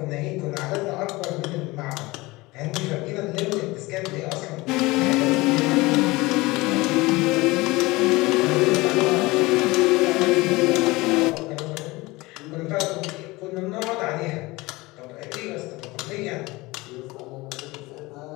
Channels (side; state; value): right; quieter; 21.8 dB